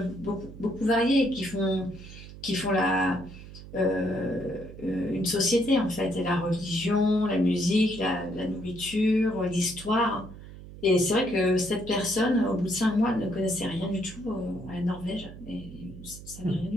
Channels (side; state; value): right; noise; hum, 15 dB below the sound